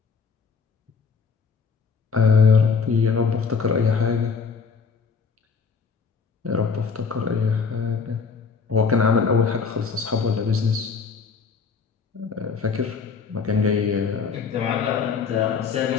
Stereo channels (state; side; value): quieter; right; 5.4 dB